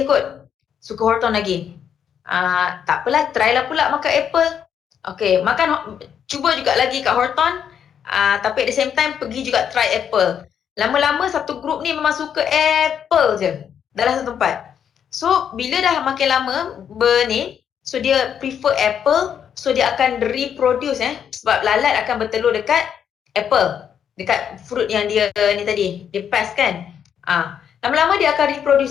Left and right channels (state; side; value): quieter; right; 8.4 dB